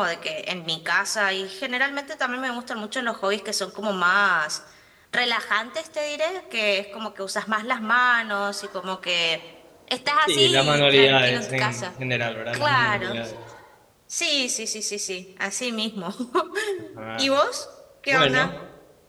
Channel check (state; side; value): identical; both; correlation 1.00